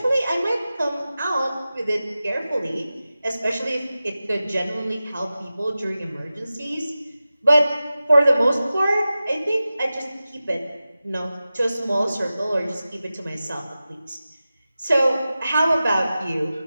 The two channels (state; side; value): inverted; both; correlation -0.95